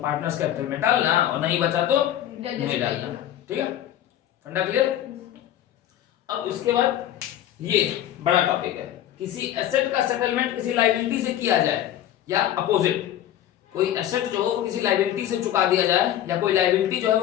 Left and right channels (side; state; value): right; quieter; 11.8 dB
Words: कैपिटल में डालना, और नहीं बचा तो नहीं डालना, ठीक है। फंडा क्लियर। अब इसके बाद ये बड़ा टॉपिक है, किसी एसेट का सेटलमेंट किसी लायबिलिटी से किया जाए या अपोजिट, कोई एसेट जो हो वो किसी लायबिलिटी से चुका दिया जाए या कोई लायबिलिटी जो है